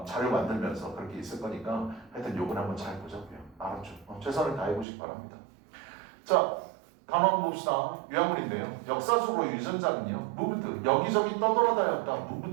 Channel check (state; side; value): drops out; left; at 4.9 s